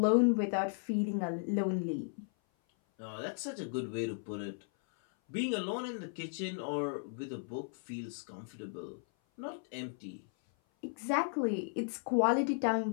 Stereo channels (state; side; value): silent; right; 54 dB below the other